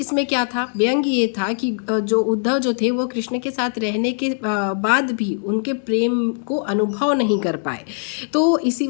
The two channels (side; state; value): right; silent; 63 dB below the other